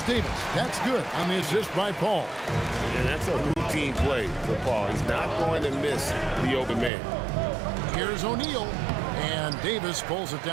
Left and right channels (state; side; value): drops out; left; at 6.9 s